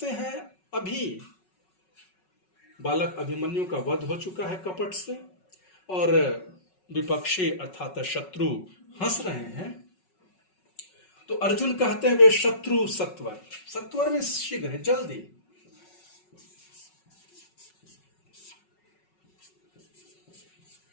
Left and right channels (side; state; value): right; late; 5.4 ms